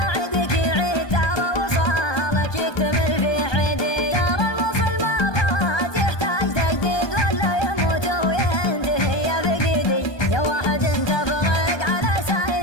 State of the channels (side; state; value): right; late; 1.2 ms